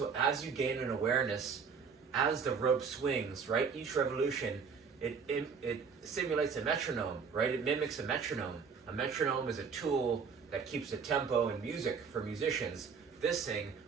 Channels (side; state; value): left; quieter; 5.8 dB